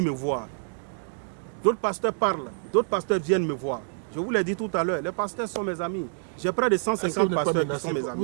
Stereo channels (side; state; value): left; silent; digital silence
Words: me voir. D'autres pasteurs parlent, d'autres pasteurs viennent me voir. Je vous l'ai dit tout à l'heure, les pasteurs sont mes amis. J'ai près de 150 pasteurs qui sont mes